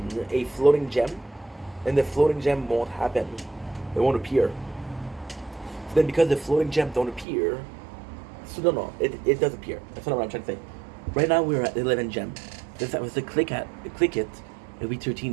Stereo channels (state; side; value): drops out; left; at 7.2 s